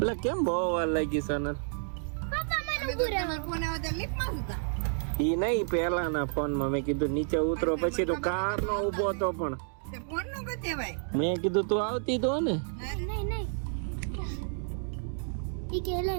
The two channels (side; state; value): left; silent; digital silence